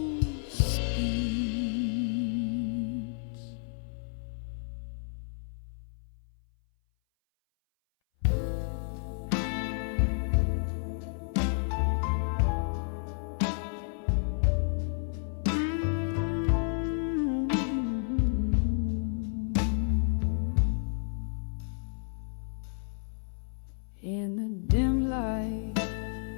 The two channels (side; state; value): right; silent; 57 dB below the other